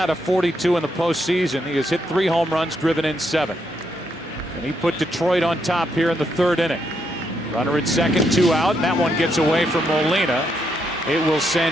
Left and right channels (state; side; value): normal; both; correlation 0.78